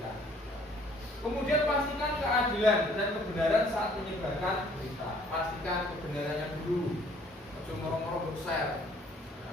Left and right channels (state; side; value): normal; both; correlation 0.59